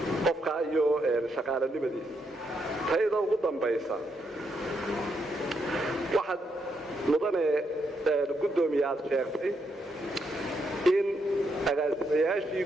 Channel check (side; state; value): both; normal; correlation 0.78